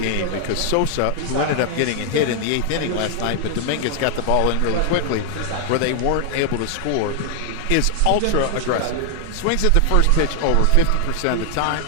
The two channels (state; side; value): different; both; correlation 0.00